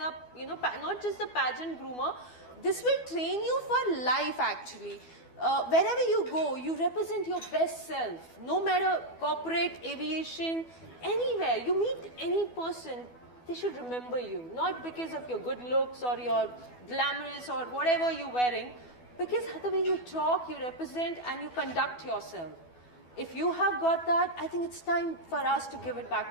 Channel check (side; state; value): right; late; 12 ms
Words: not just a pageant groomer. This will train you for life actually. Wherever you go, you represent your best self. No matter corporate, aviation, anywhere. You meet any person, they should remember you. Not because of your good looks or your glamorous or whatever you're wearing. Because the way you talk, you represent and you conduct yourself. If you have got that, I think it's time for us to give it